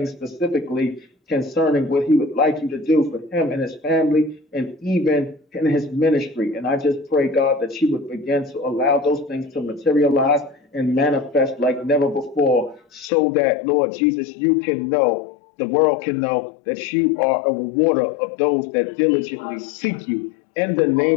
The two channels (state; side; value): drops out; right; at 13.1 s